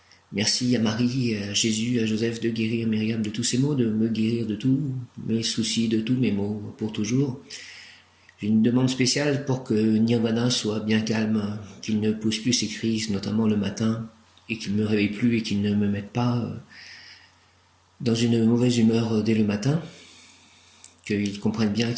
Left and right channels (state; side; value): identical; both; correlation 1.00